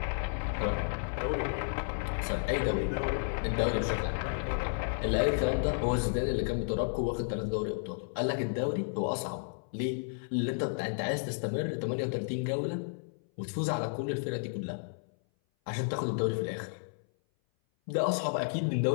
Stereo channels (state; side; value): silent; right; 56 dB below the other